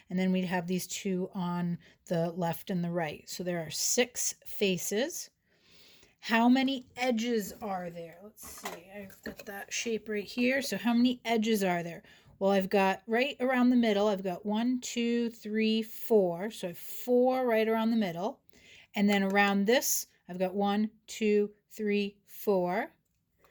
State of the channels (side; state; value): both; identical; correlation 1.00